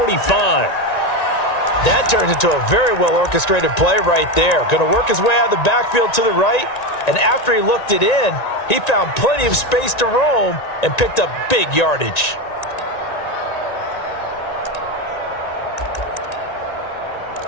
That turns into a very well-orchestrated play right there. Going to work his way out of the backfield to the right. And after he looked it in, he found plenty of space to roam and picked up big yardage.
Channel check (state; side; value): late; right; 1.9 ms